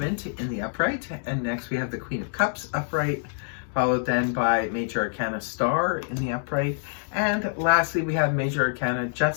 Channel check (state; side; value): silent; right; digital silence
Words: in the upright, and next we have the Queen of Cups upright, followed then by Major Arcana Star in the upright, and lastly we have Major Arcana